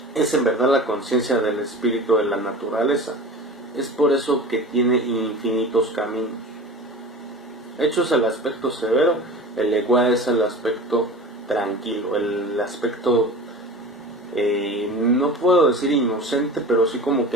es en verdad la conciencia del espíritu de la naturaleza. Es por eso que tiene infinitos caminos. Echu es el aspecto severo, el Egua es el aspecto tranquilo, el aspecto, no puedo decir inocente, pero sí como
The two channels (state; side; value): normal; both; correlation 0.36